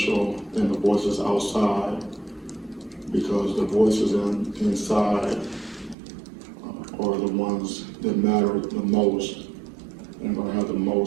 than the voices outside, because the voices inside are the ones that matter the most and going to have the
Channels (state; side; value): drops out; left; at 6.0 s